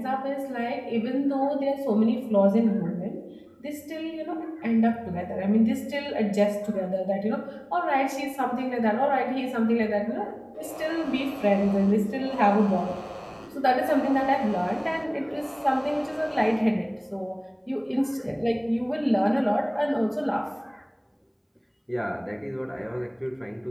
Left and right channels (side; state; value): both; identical; correlation 1.00